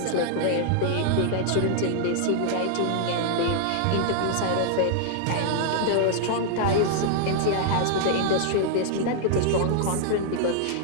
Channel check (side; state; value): both; different; correlation -0.01